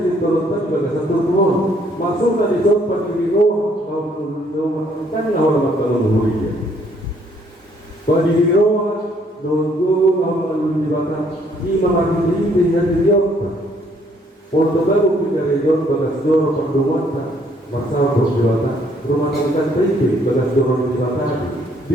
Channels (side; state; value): both; normal; correlation 0.66